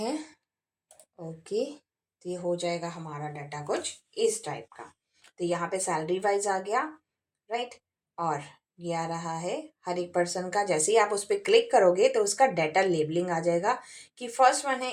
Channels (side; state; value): both; identical; correlation 1.00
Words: ओके, तो ये हो जाएगा हमारा डाटा कुछ इस टाइप का। तो यहाँ पे सैलरी वाइज आ गया, राइट। और ये आ रहा है हर एक पर्सन का। जैसे ही आप उस पर क्लिक करोगे तो उसका डाटा लेबलिंग आ जाएगा कि फर्स्ट वन